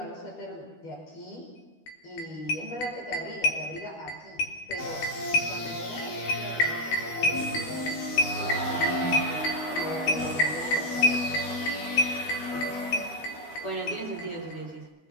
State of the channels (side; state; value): right; late; 12 ms